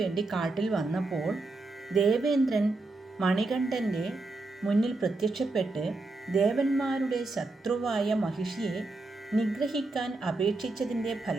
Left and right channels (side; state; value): left; quieter; 3.2 dB